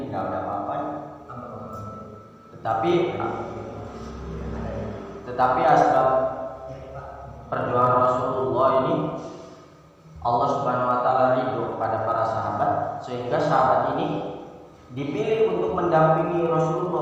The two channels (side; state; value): both; identical; correlation 1.00